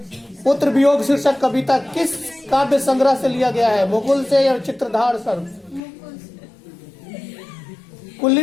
पुत्र वियोग शीर्षक कविता किस काव्य संग्रह से लिया गया है? मुकुल से या चित्रधार सर?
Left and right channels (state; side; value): drops out; right; at 5.8 s